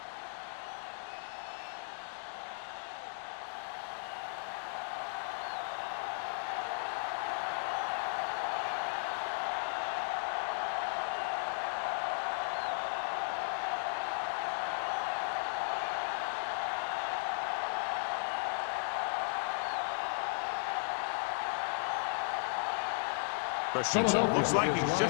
Christensen looks like he's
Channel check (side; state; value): right; silent; digital silence